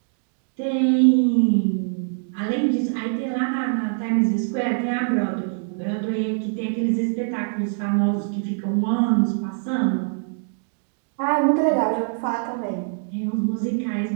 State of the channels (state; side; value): silent; left; 63 dB below the other